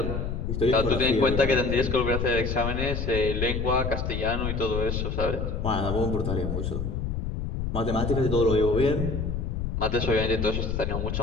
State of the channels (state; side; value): noise; left; rumble, 2 dB below the sound